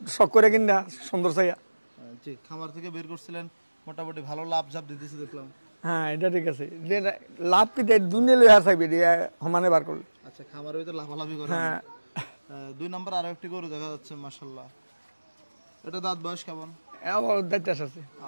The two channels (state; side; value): inverted; both; correlation -1.00